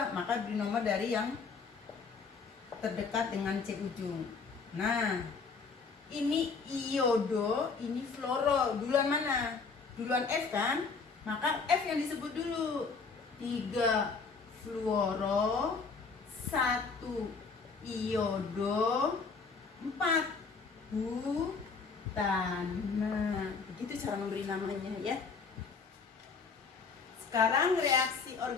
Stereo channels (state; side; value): quieter; right; 4.9 dB